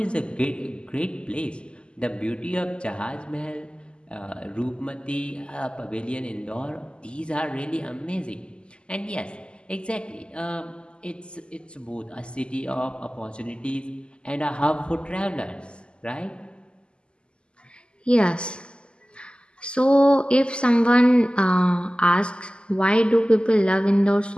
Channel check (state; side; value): late; right; 0.051 ms